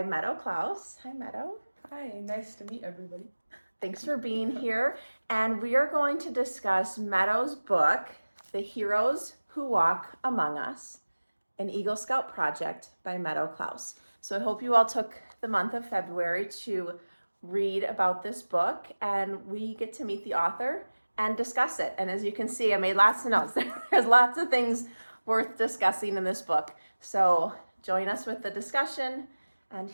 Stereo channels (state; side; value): inverted; both; correlation -1.00